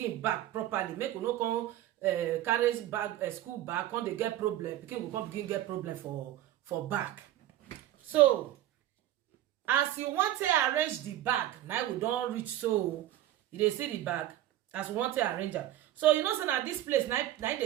back properly. Make you no come carry bag school bag, come dey get problem. Pikin go come begin get problem for back. So as you want to arrange the bag, now we don reach. So you dey see the bag as you want to arrange am. So you know say na this place now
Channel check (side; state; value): left; quieter; 13.3 dB